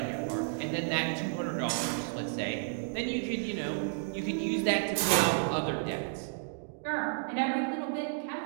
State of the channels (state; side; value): silent; left; digital silence